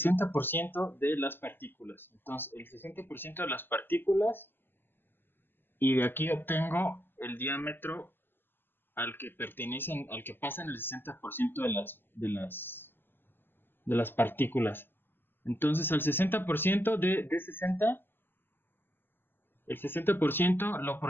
de las partículas. Entonces, el 60% de las partículas, y de aquí obtengo el diámetro al que pertenecen, al que pasan el 60% de las partículas. Entonces, al 60% de 60, el 60% lo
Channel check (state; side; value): late; right; 0.099 ms